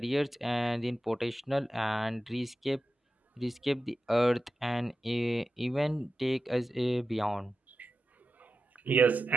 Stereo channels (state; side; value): normal; both; correlation 0.92